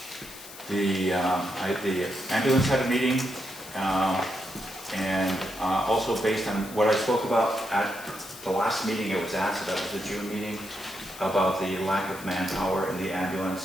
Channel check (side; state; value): left; noise; hiss, 16 dB below the sound